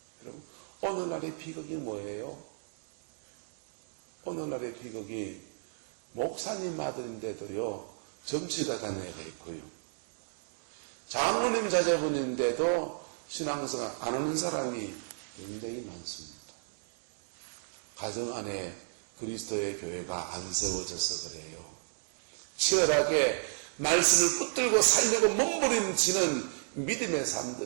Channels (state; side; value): silent; left; digital silence